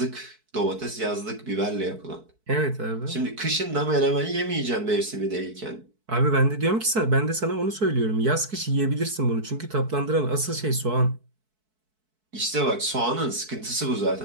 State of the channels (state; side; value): late; left; 4.6 ms